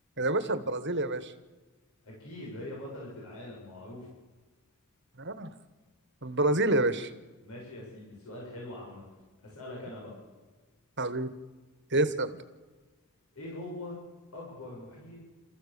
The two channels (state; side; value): normal; both; correlation -0.11